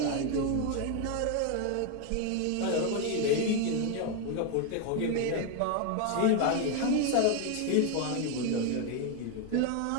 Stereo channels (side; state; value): both; different; correlation 0.01